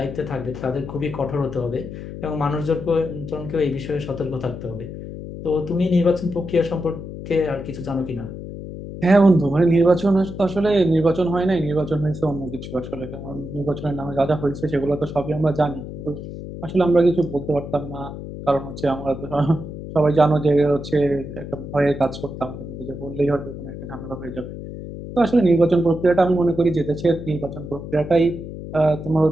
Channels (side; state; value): left; noise; hum, 10 dB below the sound